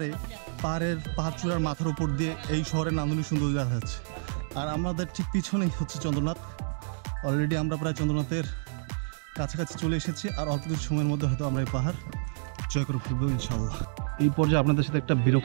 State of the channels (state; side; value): silent; left; digital silence